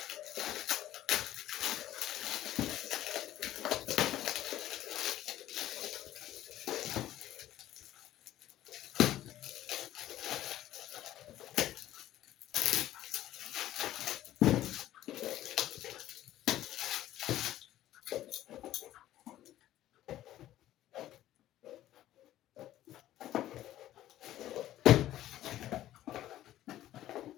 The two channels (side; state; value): right; quieter; 13.6 dB